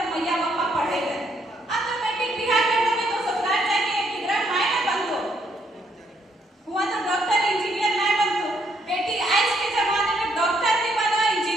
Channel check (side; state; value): both; normal; correlation 0.72